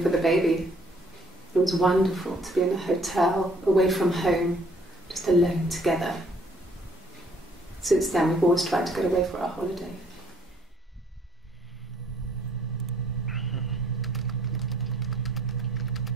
for the baby. It was wonderful to be in a hotel, away from home, just alone together. Since then, we've always tried to get away for our holiday.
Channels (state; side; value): normal; both; correlation 0.62